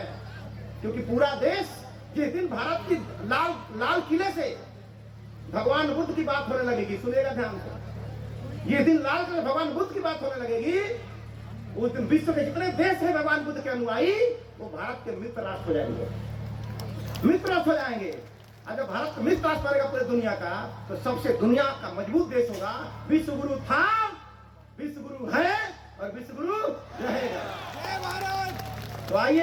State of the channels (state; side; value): identical; both; correlation 1.00